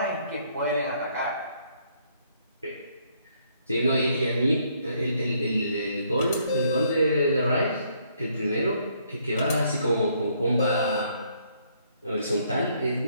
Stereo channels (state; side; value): inverted; both; correlation -0.68